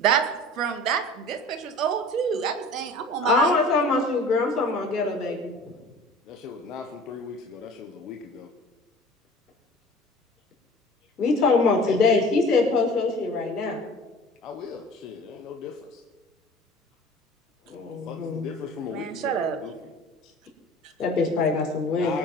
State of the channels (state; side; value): normal; both; correlation 0.43